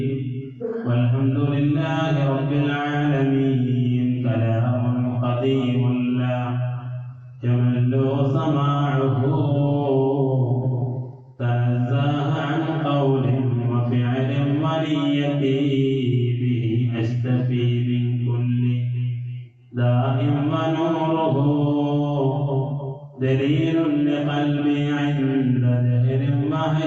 والحمد لله رب العالمين. كلام قديم لا يمل سماعه، تنزه عن قول وفعل ونيتي، به أشتفي من كل داء ونوره دليل لقلبي عند جهل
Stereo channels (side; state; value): both; identical; correlation 1.00